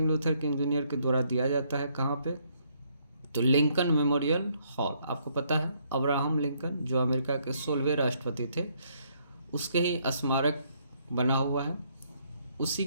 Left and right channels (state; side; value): inverted; both; correlation -0.70